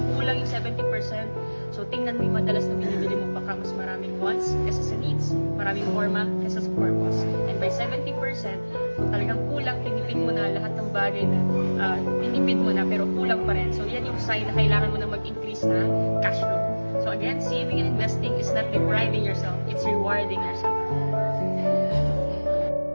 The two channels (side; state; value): both; inverted; correlation -1.00